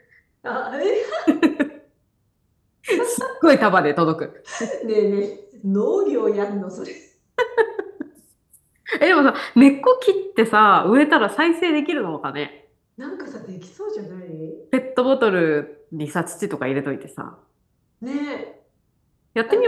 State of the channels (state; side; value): identical; both; correlation 1.00